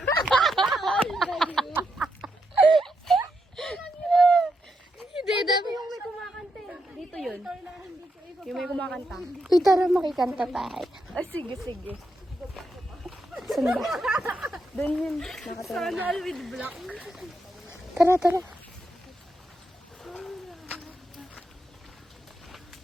Hindi, dami yung may kumakanta. Dito yun. Yung may kumakanta. Uy, tara makikanta tayo. Ay, sige, sige. Saan ba? Doon yun. Sana with black. Tara, tara.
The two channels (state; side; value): normal; both; correlation 0.82